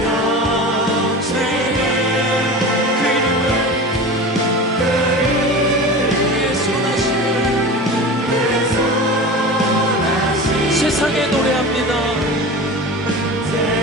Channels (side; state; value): both; normal; correlation 0.32